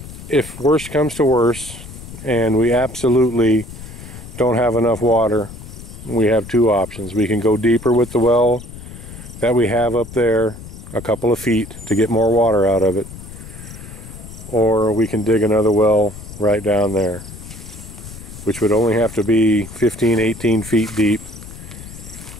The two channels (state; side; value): noise; left; rumble, 14 dB below the sound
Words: if worse comes to worse and we absolutely don't have enough water, we have two options. We can go deeper with the well that we have up there, a couple of feet, to get more water out of it, or we can dig another well right down there, which would only have to be 15-18 feet deep